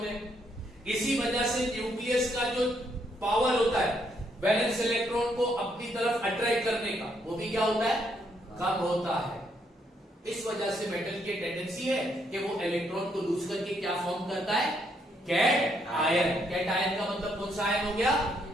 हैं, इसी वजह से न्यूक्लियस का जो पावर होता है वैलेंस इलेक्ट्रॉन को अपनी तरफ अट्रैक्ट करने का, वो भी क्या होता है, कम होता है। इस वजह से मेटल की टेंडेंसी है कि वो इलेक्ट्रॉन को लूज करके क्या फॉर्म करता है, कैट आयन। कैट आयन का मतलब कौन सा आयन हो गया,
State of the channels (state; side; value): normal; both; correlation 0.74